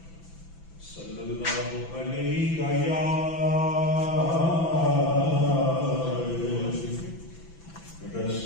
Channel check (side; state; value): right; late; 6.0 ms